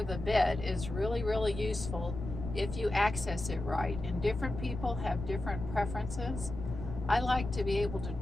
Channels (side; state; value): left; noise; rumble, 8 dB below the sound